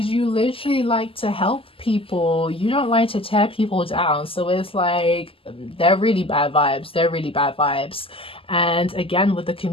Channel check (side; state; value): right; late; 0.26 ms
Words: you literally like to help people. You don't like to tear people down. So it's like they're really bad vibes. They're really bad vibes. And again, with the